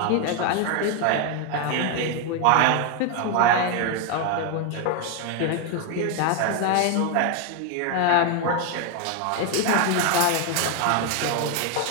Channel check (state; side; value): different; both; correlation 0.01